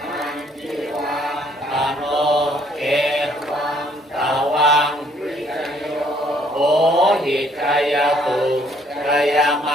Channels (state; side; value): normal; both; correlation 0.64